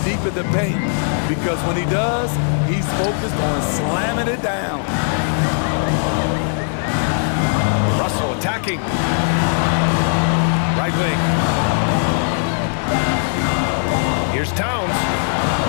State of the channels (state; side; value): silent; right; digital silence